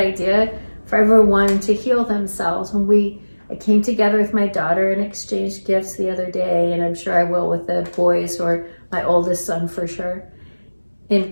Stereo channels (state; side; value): inverted; both; correlation -1.00